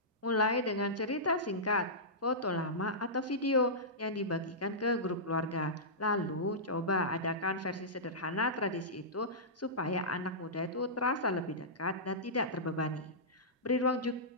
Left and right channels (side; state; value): both; normal; correlation -0.16